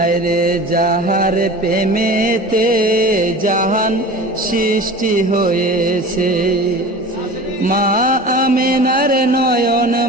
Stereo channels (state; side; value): normal; both; correlation 0.37